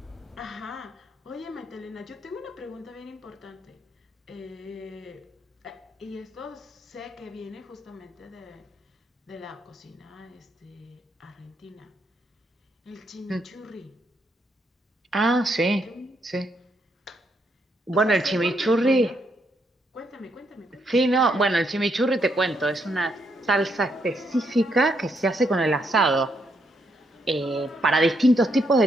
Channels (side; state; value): both; normal; correlation 0.76